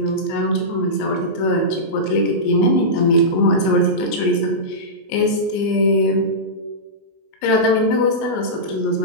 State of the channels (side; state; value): right; late; 19 ms